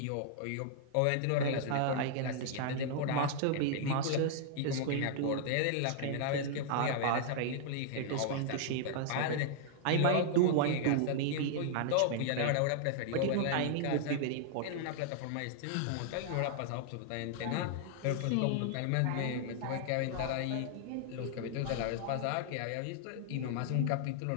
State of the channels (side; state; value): both; different; correlation -0.01